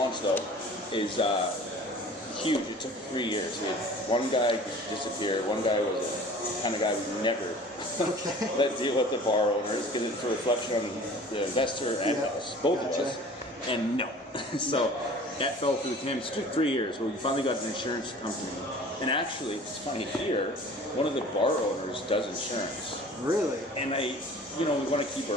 though is huge. It took 3 years. We had one guy disappear. One guy was a kind of guy we never let deal with the bar owners because it's a reflection on the investor and us, both of us. And no. So that fell through with him. It took 3 years. Well, we finally got an insurance company. And actually, it's funny here, one of the bar owners does insurance. Really? And we want to keep our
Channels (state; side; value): normal; both; correlation 0.45